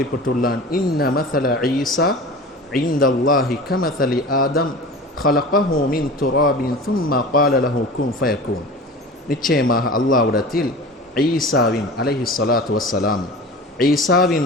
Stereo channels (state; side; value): normal; both; correlation 0.36